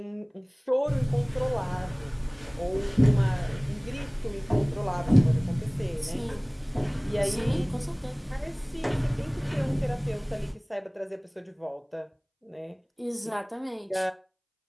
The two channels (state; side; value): identical; both; correlation 1.00